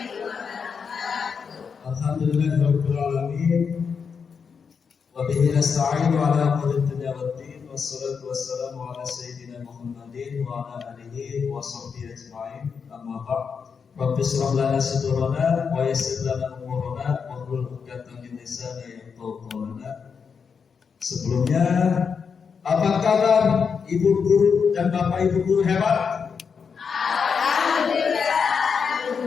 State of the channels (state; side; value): quieter; right; 6.1 dB